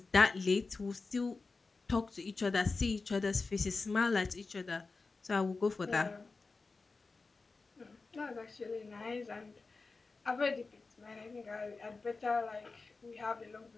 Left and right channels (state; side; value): quieter; right; 4.0 dB